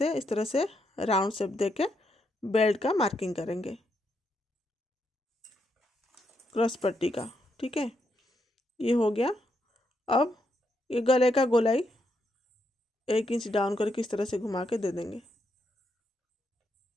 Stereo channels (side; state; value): both; normal; correlation 0.79